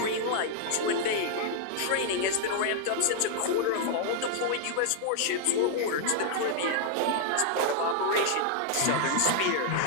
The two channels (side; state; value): both; different; correlation -0.01